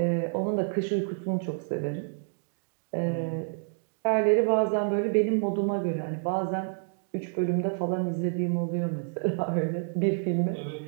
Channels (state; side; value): silent; left; digital silence